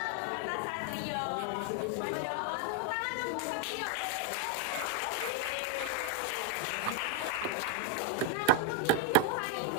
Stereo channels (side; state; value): both; different; correlation 0.00